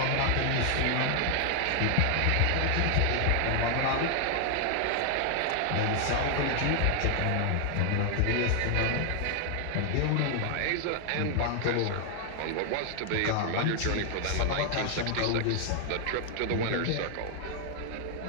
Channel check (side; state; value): both; different; correlation 0.00